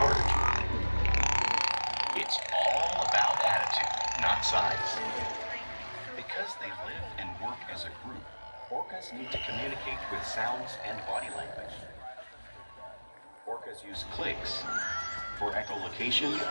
It's all about attitude, not size. Because they live and work as a group, orcas need to communicate with sounds and body language. Orcas use clicks for echolocation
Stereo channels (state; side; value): inverted; both; correlation -1.00